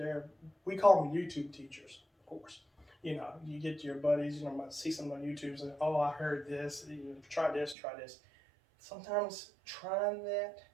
we call them YouTube teachers, of course. You get your buddies, might see something on YouTube and, oh, I heard this, try this. Sometimes trying that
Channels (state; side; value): drops out; left; at 7.8 s